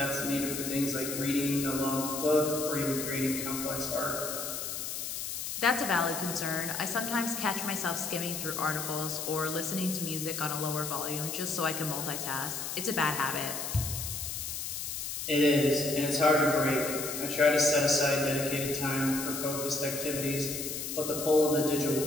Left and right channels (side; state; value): left; noise; hiss, 5 dB below the sound